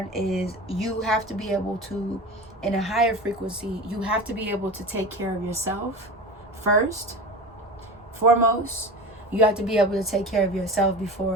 is you have to be able to, in a higher frequency, you have to be able to take care of yourself first, foremost. You have to be able to take care of yourself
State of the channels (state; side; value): normal; both; correlation 0.30